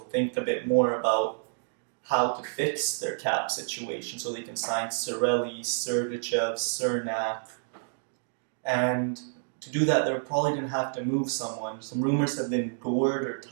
think a bit more about how to fix their cap situation so they can sign Cirelli, Sergachev, Cernak. And to do that, they're probably going to have to move someone. Some rumors have been Gord or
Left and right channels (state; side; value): silent; left; digital silence